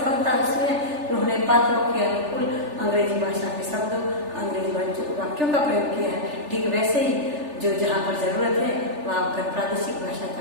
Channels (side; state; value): left; late; 3.4 ms